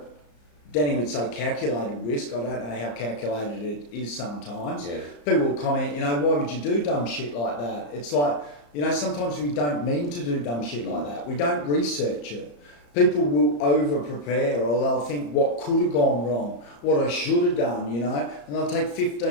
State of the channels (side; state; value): right; late; 34 ms